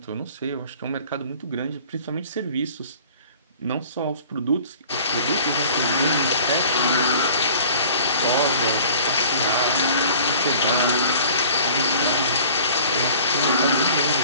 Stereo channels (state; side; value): inverted; both; correlation -0.48